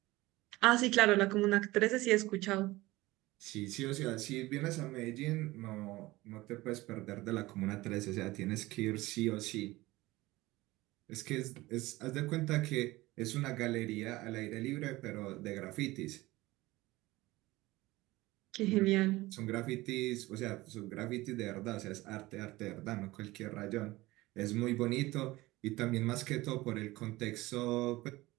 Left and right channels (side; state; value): left; quieter; 19.4 dB